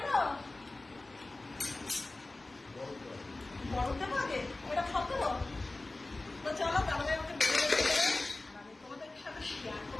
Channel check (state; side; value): quieter; right; 3.0 dB